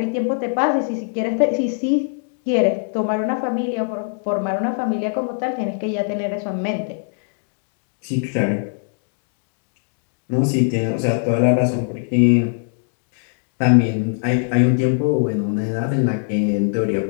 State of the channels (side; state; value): right; silent; 65 dB below the other